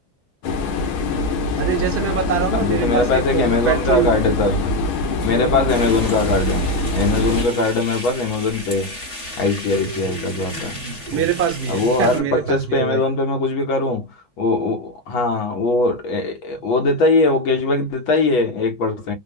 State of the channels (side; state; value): right; late; 3.4 ms